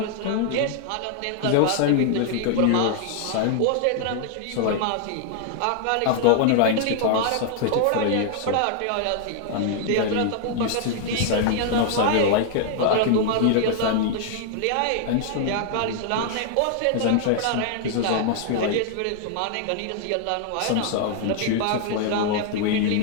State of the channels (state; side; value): different; both; correlation 0.00